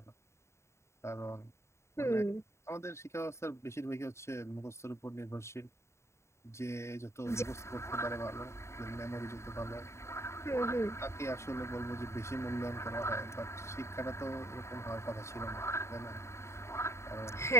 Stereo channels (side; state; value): right; late; 0.13 ms